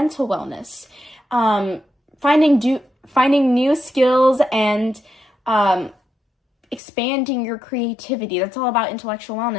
wellness, finding new skills and expanding your creativity. That's all about intellectual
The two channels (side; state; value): right; drops out; at 6.8 s